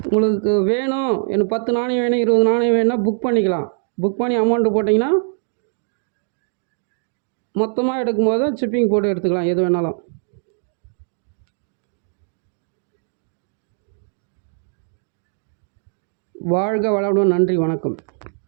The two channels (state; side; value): silent; left; 65 dB below the other